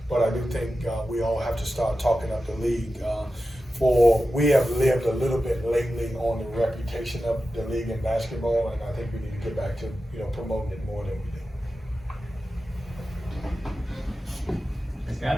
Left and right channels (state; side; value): normal; both; correlation 0.92